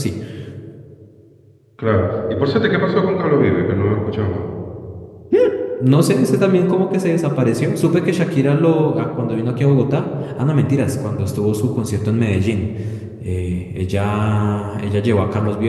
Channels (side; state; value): both; identical; correlation 1.00